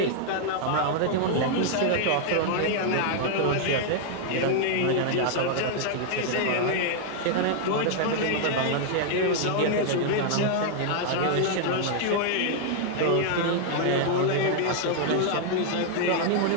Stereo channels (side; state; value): both; different; correlation 0.00